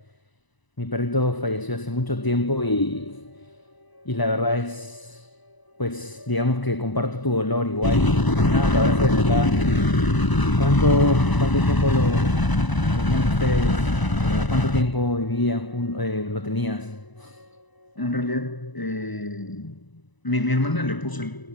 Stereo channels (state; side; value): late; right; 1.0 ms